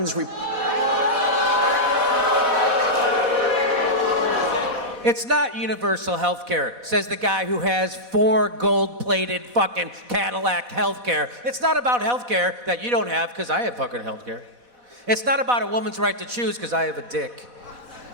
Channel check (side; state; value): left; late; 4.1 ms